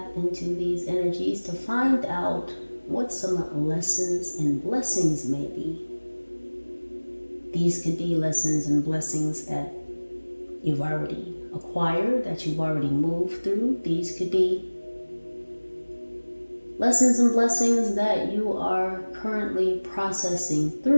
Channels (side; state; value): both; inverted; correlation -1.00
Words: into these energies to find out what some lessons and blessings may be. These could be lessons and blessings that you've already acquired, that you've already moved through. These could be lessons and blessings that you are currently processing